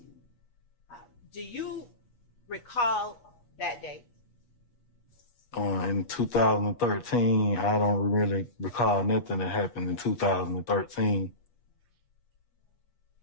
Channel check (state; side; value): late; right; 8.3 ms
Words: Do you recall that date? In 2013, I don't really recall nothing that happened in 2013.